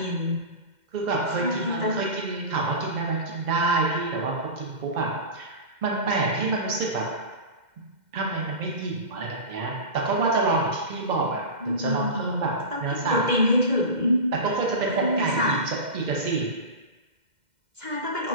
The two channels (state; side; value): late; left; 2.1 ms